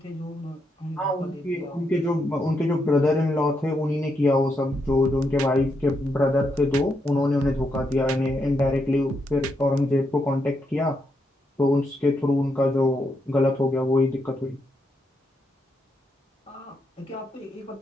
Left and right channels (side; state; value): both; normal; correlation 0.80